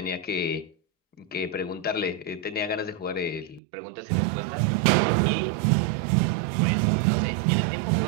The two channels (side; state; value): left; drops out; at 3.6 s